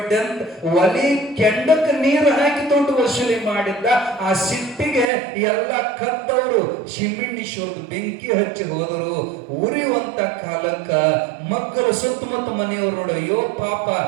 ಅಂತ ಒಲಿ ಕೆಂಡಕ್ಕೆ ನೀರು ಹಾಕಿ ದುಡ್ಡು ವಸೂಲಿ ಮಾಡಿದ್ದ. ಆ ಸಿಟ್ಟಿಗೆ ಎಲ್ಲ ಕದ್ದವರು ಸಿಮೆಣ್ಣೀಶ್ವರದ ಬೆಂಕಿ ಹಚ್ಚಿ ಹೋದರು. ಉರಿಯುವಂತ ಕಾಲಕ್ಕ ಮಕ್ಕಳು ಸುತ್ತಮುತ್ತ ಮನೆಯವರು ನೋಡ, ಅಯ್ಯೋ ಪಾಪ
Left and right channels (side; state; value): left; drops out; at 5.1 s